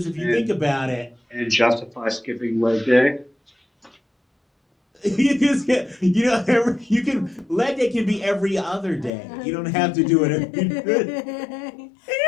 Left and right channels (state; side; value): drops out; right; at 9.1 s